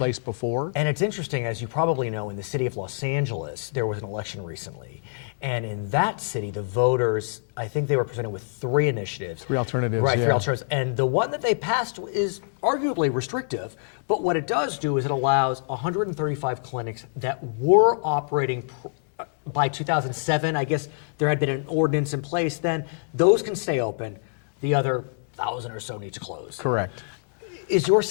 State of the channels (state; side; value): silent; right; 61 dB below the other